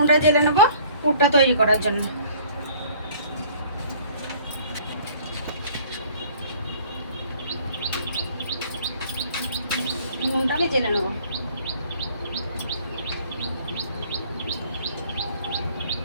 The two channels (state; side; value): inverted; both; correlation -0.54